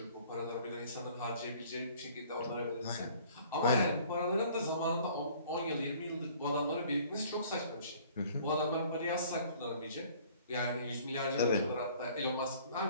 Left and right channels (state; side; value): inverted; both; correlation -0.54